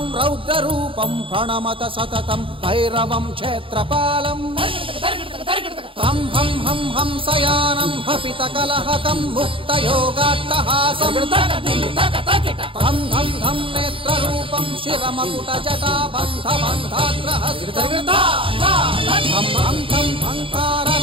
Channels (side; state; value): left; late; 0.26 ms